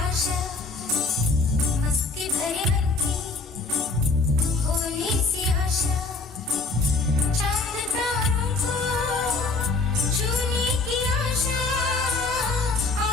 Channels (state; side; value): quieter; right; 3.8 dB